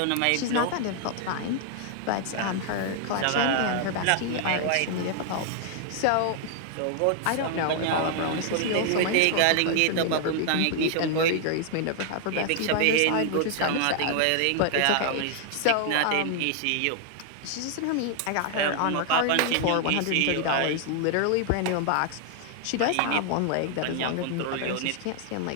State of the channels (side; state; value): both; different; correlation 0.00